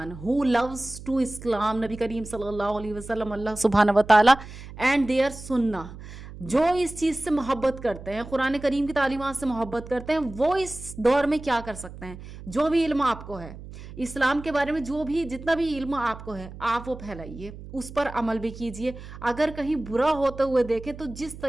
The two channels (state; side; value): noise; right; hum, 14 dB below the sound